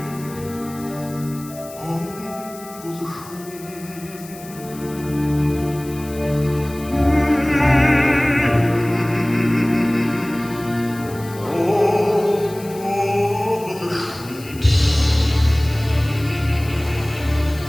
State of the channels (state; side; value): noise; left; hiss, 18 dB below the sound